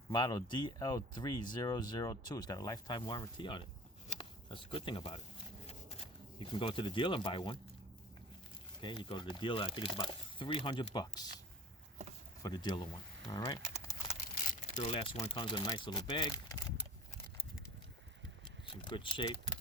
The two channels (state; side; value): normal; both; correlation 0.44